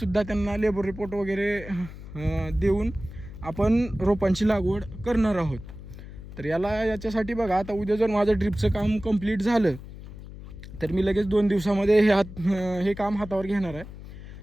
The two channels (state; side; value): noise; left; hum, 14 dB below the sound